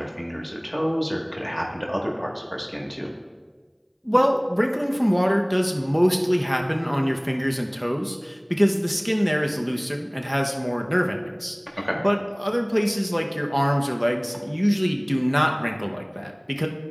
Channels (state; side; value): identical; both; correlation 1.00